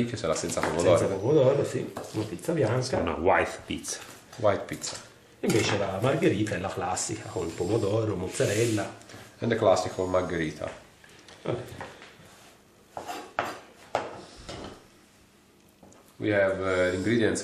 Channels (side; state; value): both; identical; correlation 1.00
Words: sarà senza pomodoro. Senza pomodoro, sì. Una pizza bianca. Una white pizza. White pizza. Invece la margherita è la classica, con il pomodoro, mozzarella. And the classical margherita. Vabbè. We have ingredients